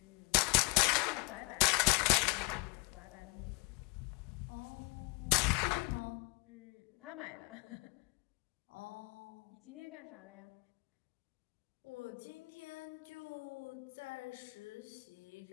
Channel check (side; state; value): right; quieter; 29.7 dB